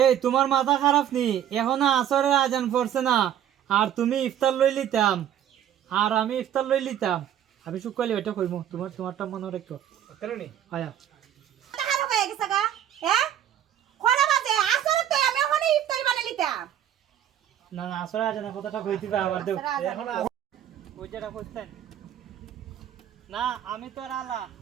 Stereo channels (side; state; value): left; quieter; 10.5 dB